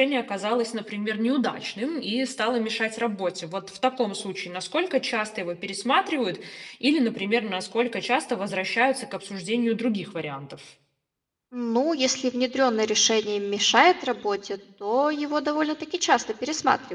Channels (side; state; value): both; identical; correlation 1.00